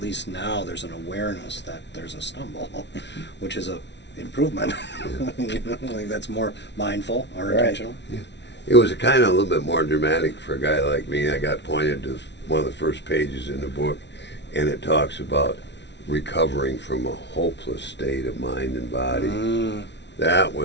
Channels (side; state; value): right; late; 0.51 ms